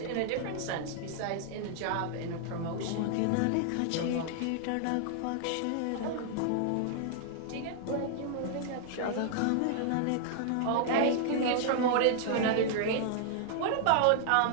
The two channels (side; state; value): both; different; correlation -0.01